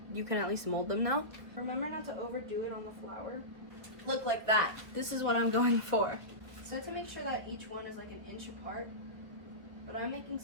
you can at least mold them now. Remember not to overdo it on the flour. Look like that. This is what I'm going for. So to make sure that each one is like an inch apart, but I'm making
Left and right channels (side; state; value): left; late; 1.5 ms